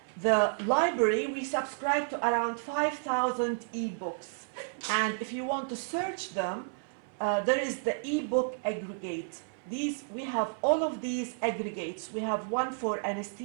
the library, we subscribe to around 5,000 e-books. And if you want to search them, there is the e-book aggregate. We have all of these aggregates. We have one for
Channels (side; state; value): left; silent; 57 dB below the other